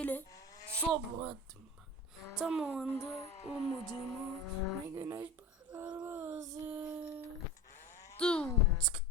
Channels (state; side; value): normal; both; correlation 0.32